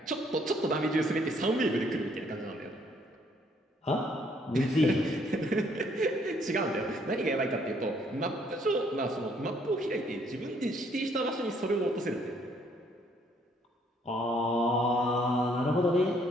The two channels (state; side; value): normal; both; correlation 0.66